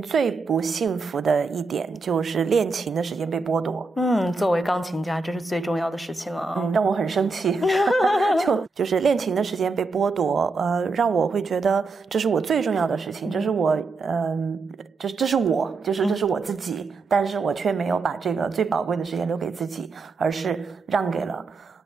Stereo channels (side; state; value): left; quieter; 4.0 dB